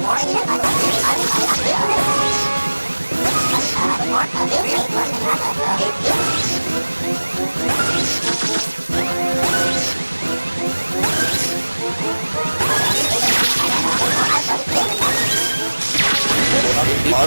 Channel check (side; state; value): both; inverted; correlation -1.00